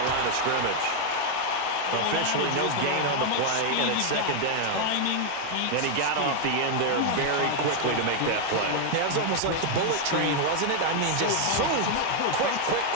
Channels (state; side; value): different; both; correlation 0.00